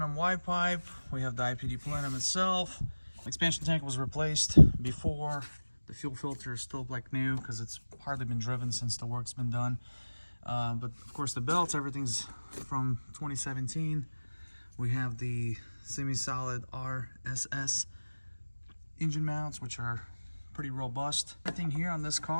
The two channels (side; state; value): both; inverted; correlation -1.00